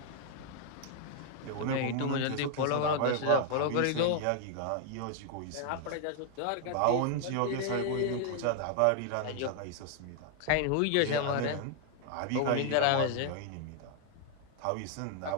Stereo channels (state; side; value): different; both; correlation 0.00